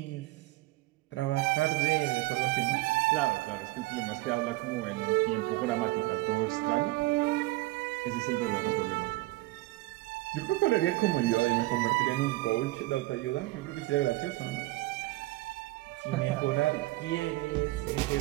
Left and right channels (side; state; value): left; quieter; 19.6 dB